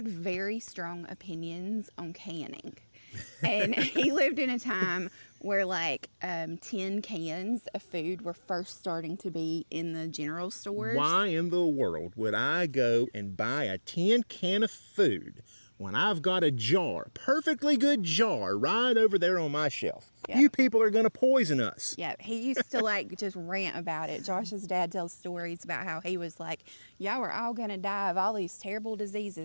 very strong opinions on canning. And he lived in a time where like tin cans of food were first starting to be in the general stores. Why in the world would I go and buy a tin can of food when I've got a jar, perfectly good jar, right over there on my shelf? Yep. You people are going to poison us. Yeah, he used to like just rant about it. Josh's dad tells stories about how he was like, y'all are all going to die of all these terrible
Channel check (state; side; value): inverted; both; correlation -1.00